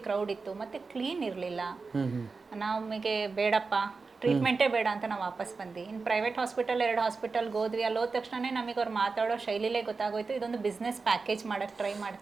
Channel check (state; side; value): quieter; left; 4.4 dB